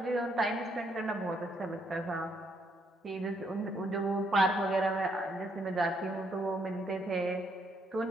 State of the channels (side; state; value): both; normal; correlation 0.73